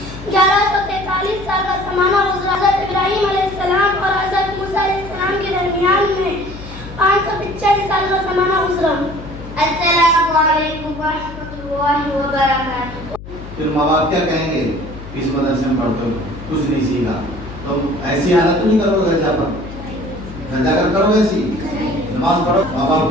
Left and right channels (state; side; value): noise; left; hum, 14 dB below the sound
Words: 1143 साल का ज़माना गुजरा। हज़रत इब्राहीम अलैहिस्सलाम और हज़रत मूसा अलैहिस्सलाम के दरमियान में 585 साल का ज़माना गुजरा। अस्सलामु अलैकुम व रहमतुल्लाहि व बरकातुहू। फिर माँ बाप क्या कहेंगे, इस मदरसे में पढ़ते हो कुछ नहीं सीखा, तो ऐसी हालत तो नहीं करोगे घर जाकर करोगे ऐसी नमाज पढ़ो, माँ बाप